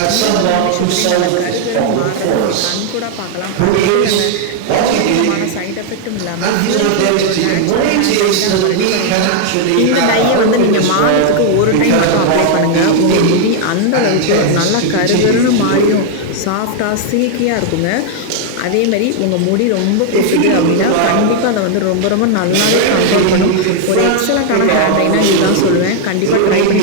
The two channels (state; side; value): different; both; correlation 0.00